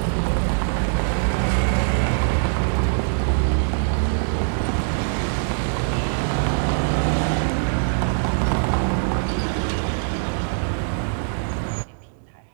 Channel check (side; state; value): left; silent; digital silence